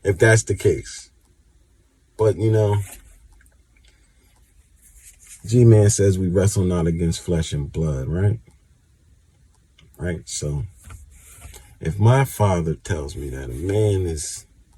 that's the case. But, you know, G-Man says we wrestle not against flesh and blood, right? Right? So, If my father tells me that a man is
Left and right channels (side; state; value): both; identical; correlation 1.00